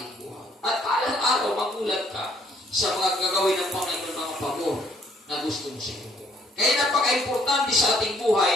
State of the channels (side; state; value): both; normal; correlation 0.65